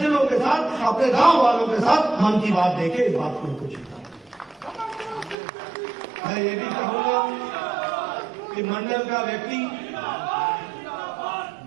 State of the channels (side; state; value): left; drops out; at 5.4 s